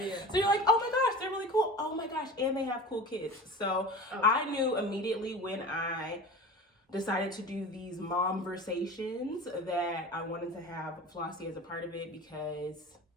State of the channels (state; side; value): normal; both; correlation 0.35